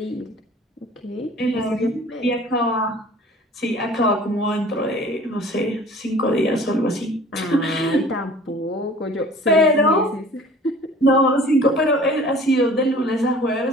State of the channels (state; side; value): normal; both; correlation 0.47